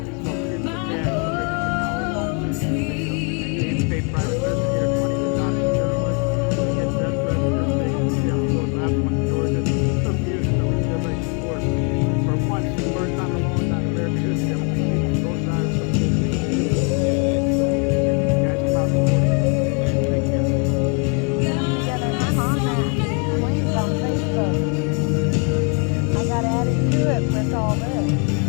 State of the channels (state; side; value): quieter; right; 37.3 dB